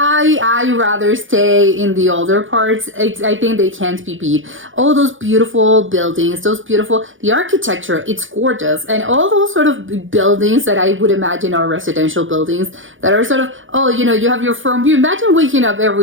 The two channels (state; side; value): late; left; 0.57 ms